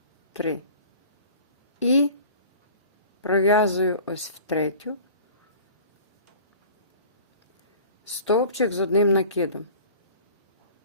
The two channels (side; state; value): both; inverted; correlation -0.44